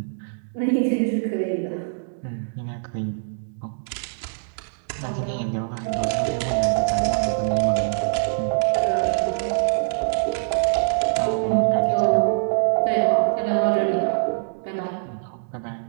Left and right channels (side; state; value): left; silent; digital silence